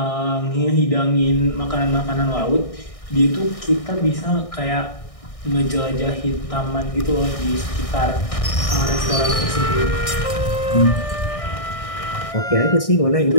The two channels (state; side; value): late; right; 1.6 ms